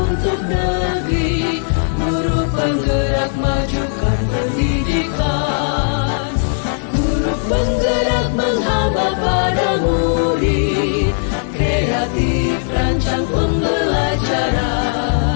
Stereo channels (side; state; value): right; silent; 63 dB below the other